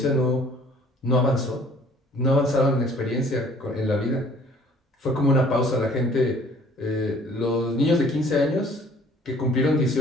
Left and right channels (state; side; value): normal; both; correlation 0.55